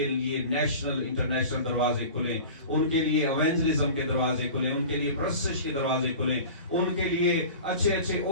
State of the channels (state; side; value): inverted; both; correlation -0.37